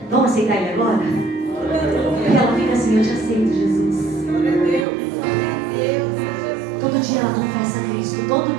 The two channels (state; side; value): drops out; left; at 4.9 s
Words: Vamos aceitar Ele agora? E ela fica assim, eu te aceito, Jesus. Todo dia ela confessa a Cristo. Todo